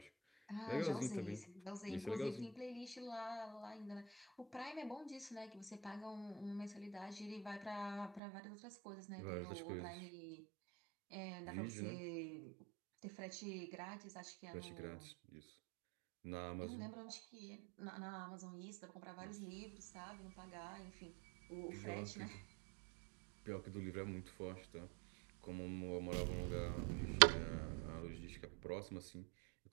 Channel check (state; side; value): drops out; left; at 8.2 s